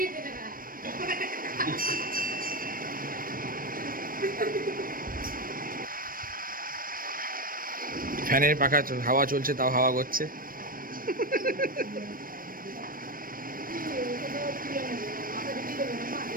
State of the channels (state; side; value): late; left; 0.41 ms